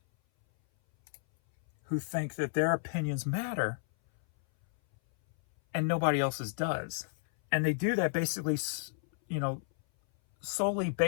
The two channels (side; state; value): right; silent; 57 dB below the other